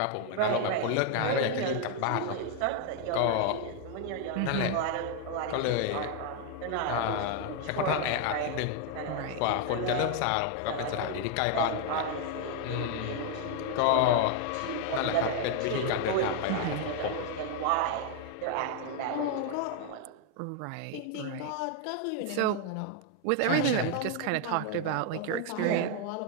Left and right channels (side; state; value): both; different; correlation 0.01